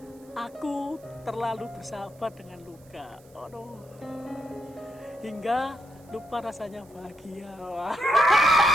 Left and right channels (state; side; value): noise; right; hiss, 28 dB below the sound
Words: Aku terlalu bersahabat dengan luka. Aduh. Hingga lupa rasanya bahagia.